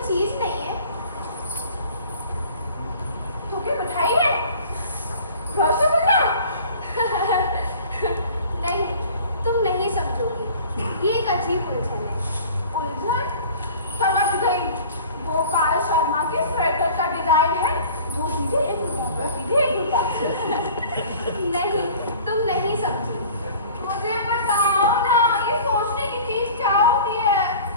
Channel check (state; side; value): inverted; both; correlation -0.45